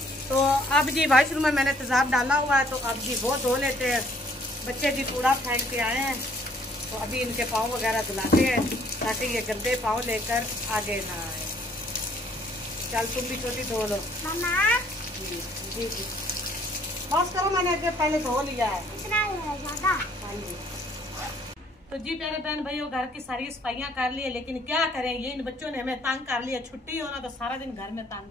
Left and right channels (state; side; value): normal; both; correlation 0.62